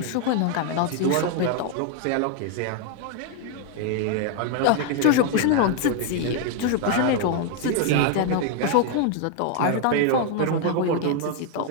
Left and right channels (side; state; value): both; different; correlation 0.00